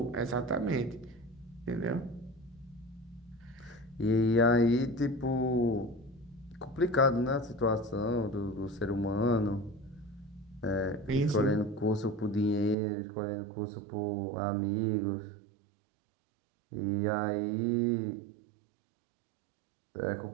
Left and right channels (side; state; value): left; drops out; at 12.8 s